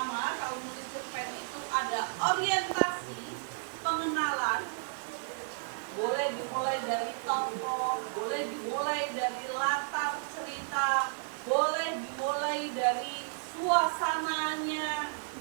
kalau menulis cerpen itu ada orientasi, pengenalan. Boleh dimulai dari tokoh, boleh dimulai dari latar cerita, boleh dimulai dari suasananya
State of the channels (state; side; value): silent; left; 56 dB below the other